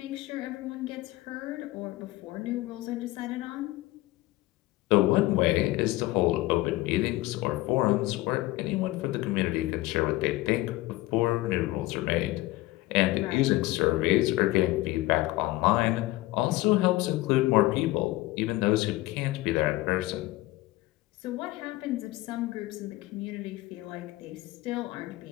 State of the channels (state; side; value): quieter; right; 18.8 dB